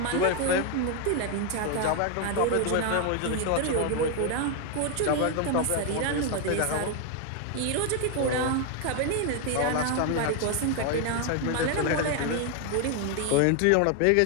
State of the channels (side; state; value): both; different; correlation 0.01